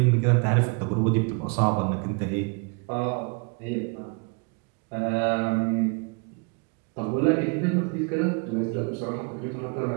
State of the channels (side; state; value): left; quieter; 34.7 dB